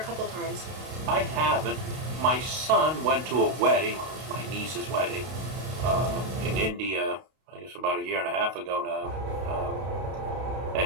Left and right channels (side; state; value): left; late; 32 ms